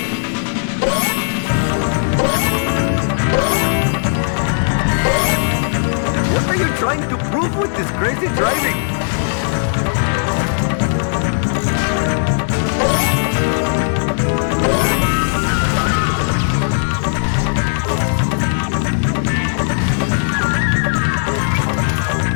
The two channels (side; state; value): right; silent; digital silence